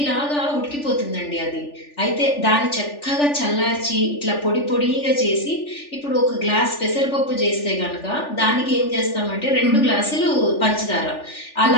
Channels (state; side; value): late; right; 3.4 ms